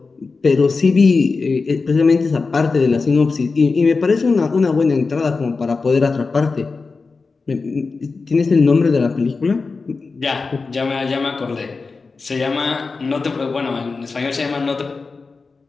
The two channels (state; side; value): quieter; right; 4.3 dB